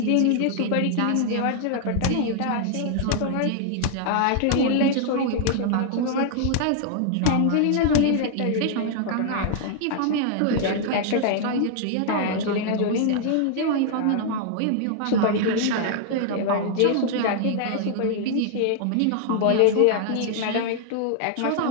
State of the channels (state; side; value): different; both; correlation 0.00